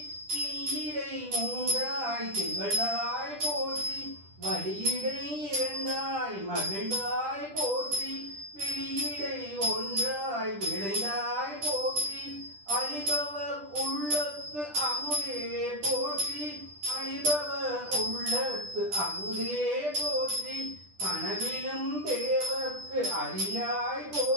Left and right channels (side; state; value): left; late; 10 ms